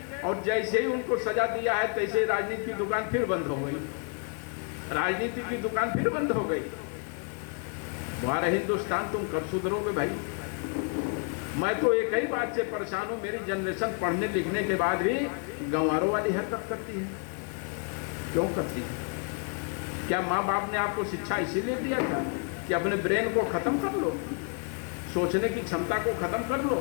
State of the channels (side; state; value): right; quieter; 40.0 dB